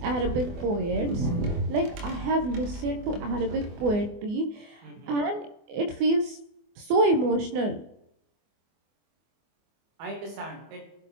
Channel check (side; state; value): left; late; 24 ms